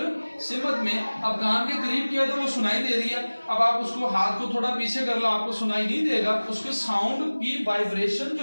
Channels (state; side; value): inverted; both; correlation -1.00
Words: अब कान के करीब किया तो वो सुनाई दे रही है, अब आप उसको हाथ को थोड़ा पीछे कर लो, आपको सुनाई नहीं देगा। उसके साउंड की वाइब्रेशन